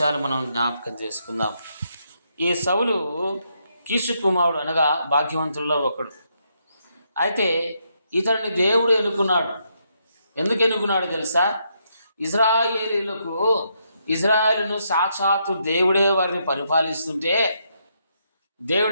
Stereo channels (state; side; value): inverted; both; correlation -0.77